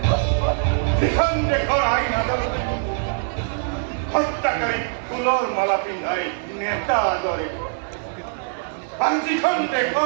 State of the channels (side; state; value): left; silent; digital silence